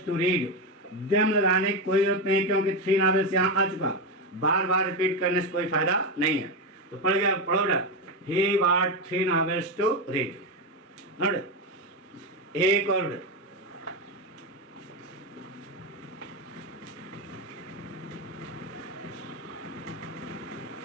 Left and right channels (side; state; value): both; normal; correlation 0.11